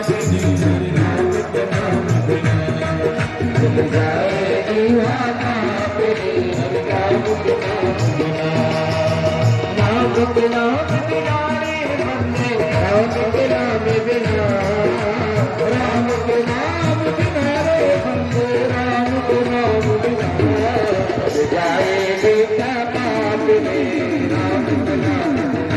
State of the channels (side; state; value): both; identical; correlation 1.00